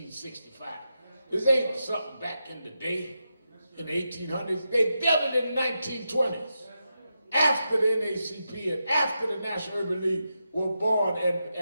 This ain't something back in the day, in the 1800s. They built it in the 1920s, after the NAACP and after the National Urban League were born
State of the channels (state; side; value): inverted; both; correlation -0.87